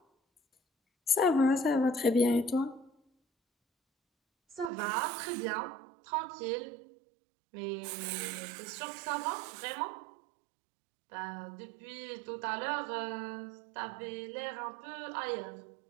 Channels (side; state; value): left; drops out; at 4.7 s